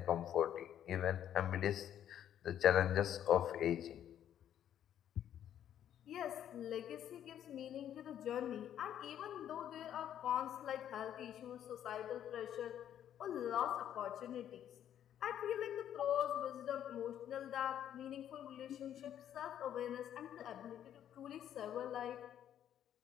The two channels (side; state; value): right; quieter; 10.4 dB